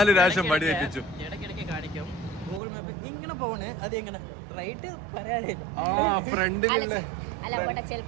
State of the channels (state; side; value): drops out; left; at 2.6 s